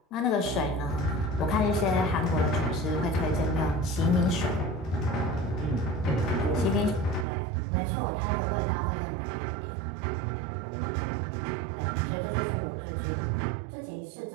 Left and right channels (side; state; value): left; drops out; at 7.2 s